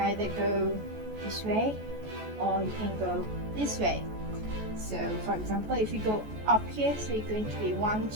go this way or you can go this way. So for example, if you go up here, so you're going to be 1,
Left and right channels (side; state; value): left; late; 14 ms